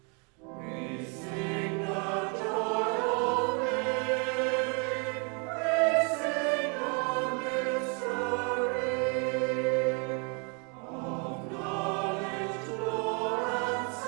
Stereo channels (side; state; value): left; quieter; 35.4 dB